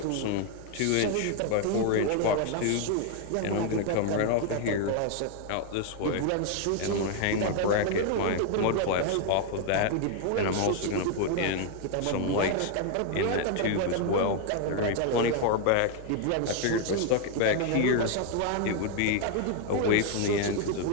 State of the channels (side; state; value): both; different; correlation 0.01